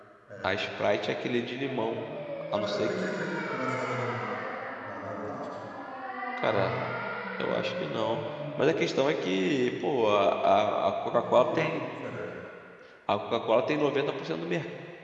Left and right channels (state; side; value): identical; both; correlation 1.00